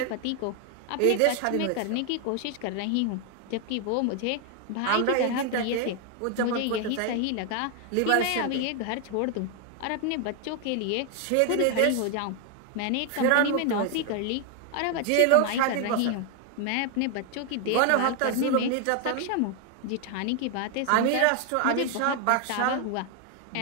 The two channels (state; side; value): different; both; correlation 0.01